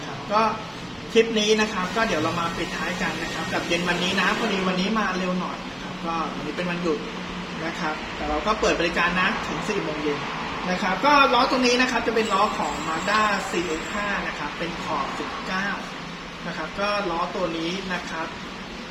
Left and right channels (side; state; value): both; identical; correlation 1.00